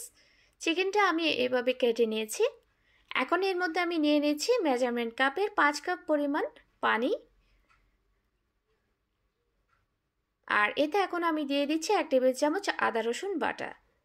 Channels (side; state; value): both; identical; correlation 1.00